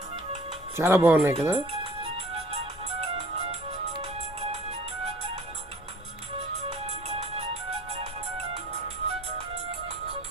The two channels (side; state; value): both; normal; correlation 0.51